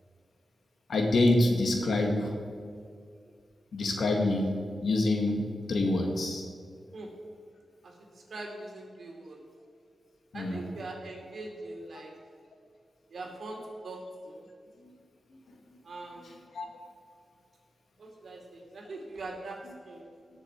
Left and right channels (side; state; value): both; normal; correlation 0.89